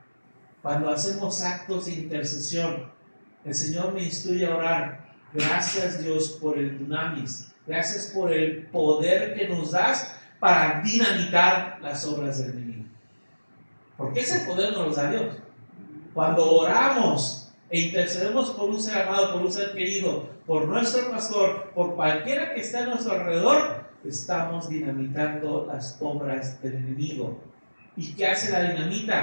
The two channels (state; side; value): inverted; both; correlation -1.00